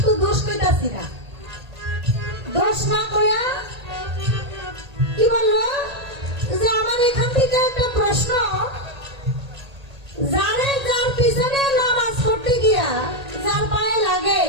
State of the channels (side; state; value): left; late; 1.8 ms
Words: দোষ কইতাছি না। দোষ না কইয়া কি বললো যে আমার এখান থেকে একটা প্রশ্ন, যার পিছনে নামাজ পড়তে গিয়া যার পায়ে লাগে,